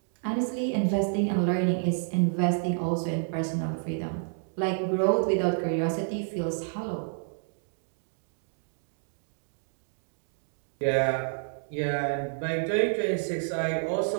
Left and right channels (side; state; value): left; silent; digital silence